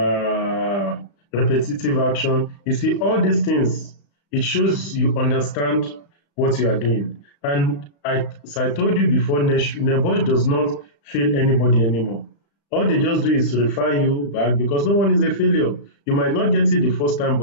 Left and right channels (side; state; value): right; late; 35 ms